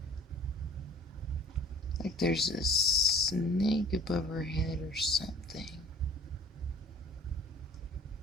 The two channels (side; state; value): both; normal; correlation 0.49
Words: Like there's a snake above her head or something.